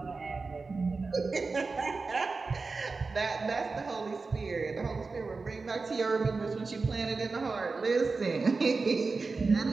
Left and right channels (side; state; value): left; quieter; 4.1 dB